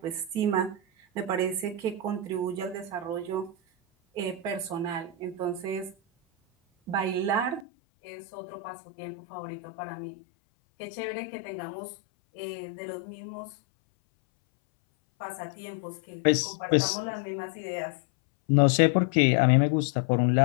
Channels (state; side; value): drops out; right; at 7.7 s